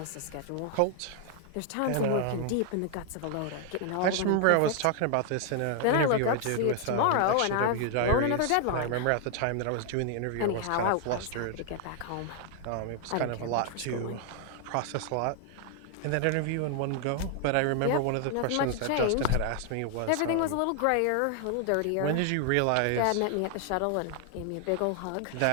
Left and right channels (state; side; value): different; both; correlation 0.00